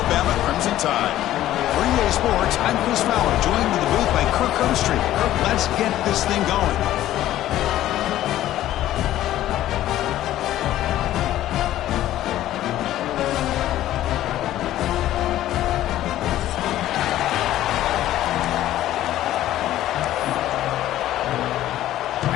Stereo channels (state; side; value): quieter; right; 13.6 dB